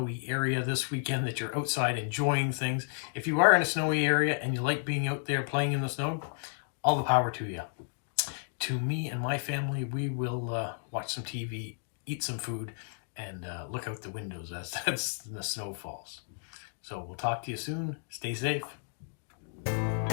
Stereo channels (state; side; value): silent; right; digital silence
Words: area this weekend, that you're outside enjoying things. If you are in a snowy area and you like being out there playing in the snow, all the power to you. To me and my family, we will watch some TV, eat some food, and look out the windows as the snow falls. So we'll talk to you soon. Stay safe.